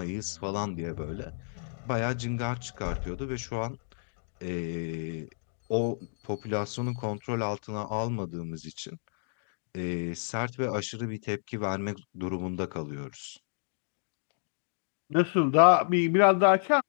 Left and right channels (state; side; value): silent; right; digital silence